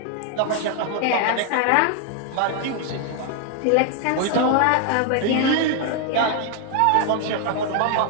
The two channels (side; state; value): both; different; correlation 0.00